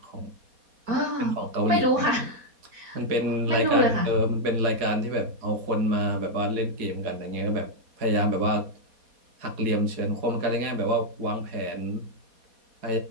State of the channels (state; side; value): late; left; 4.2 ms